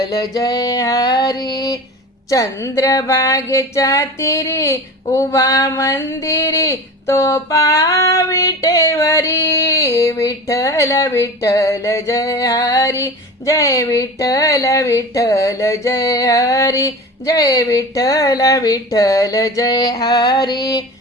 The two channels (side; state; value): both; normal; correlation 0.33